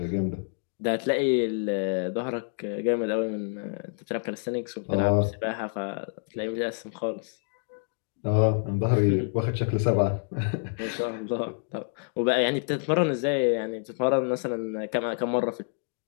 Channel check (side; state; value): right; silent; digital silence